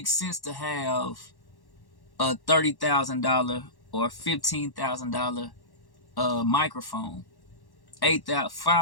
sense to have a $30,000 or $15,000 microphone,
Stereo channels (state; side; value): late; right; 1.1 ms